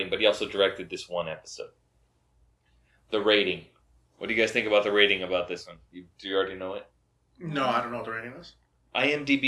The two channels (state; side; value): identical; both; correlation 1.00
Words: but he also directed this one episode. The rating. What do you guys think about the rating about this one? Do you already know it? No, I don't know what the rating is.